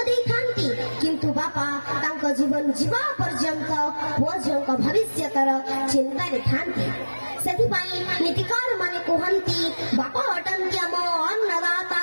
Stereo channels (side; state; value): both; inverted; correlation -1.00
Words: ଦେଇଥାନ୍ତି, କିନ୍ତୁ ବାପା ତାଙ୍କ ଜୀବନ ଯିବା ପର୍ଯ୍ୟନ୍ତ ପୁଅ ଝିଅଙ୍କ ଭବିଷ୍ୟତର ଚିନ୍ତାରେ ଥାନ୍ତି। ସେଥିପାଇଁ ନୀତିକାର ମାନେ କୁହନ୍ତି, ବାପା ଅଟନ୍ତି ଆମ ଅନ୍ନଦାତା,